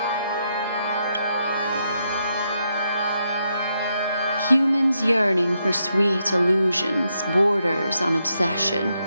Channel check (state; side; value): inverted; both; correlation -0.80